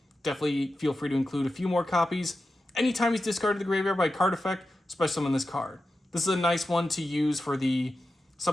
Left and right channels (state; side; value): normal; both; correlation 0.91